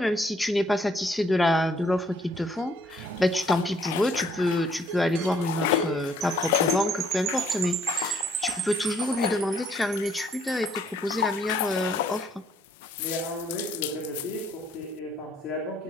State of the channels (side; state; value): both; normal; correlation 0.64